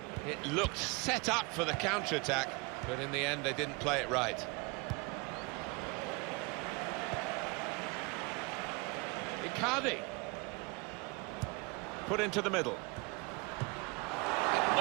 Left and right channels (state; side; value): quieter; left; 28.4 dB